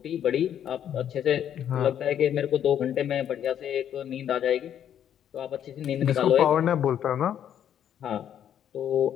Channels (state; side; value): quieter; right; 9.8 dB